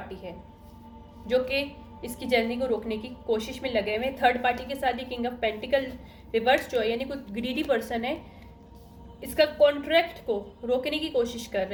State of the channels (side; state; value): both; identical; correlation 1.00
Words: है जो कि इसकी जर्नी को रोकने की कोशिश में लगे हुए। थर्ड पार्टी के साथ ही किंग ऑफ पेंटिकल रिवर्स जो है, यानी कोई ग्रीडी पर्सन है, इसका कॉन्ट्रैक्ट को रोकने की कोशिश कर